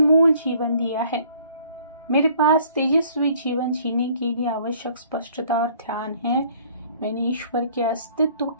जीवन दिया है। मेरे पास तेजस्वी जीवन जीने के लिए आवश्यक स्पष्टता और ध्यान है। मैंने ईश्वर के अस्तित्व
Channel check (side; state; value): both; inverted; correlation -0.57